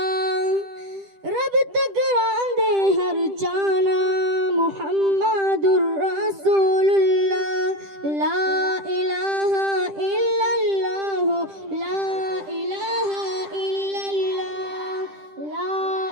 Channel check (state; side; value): late; left; 10 ms